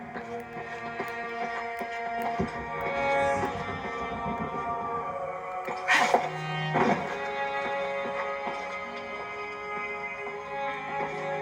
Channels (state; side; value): identical; both; correlation 1.00